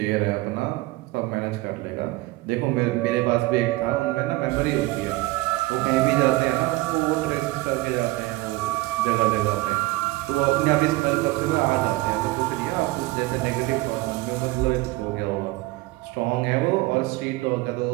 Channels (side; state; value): left; quieter; 20.3 dB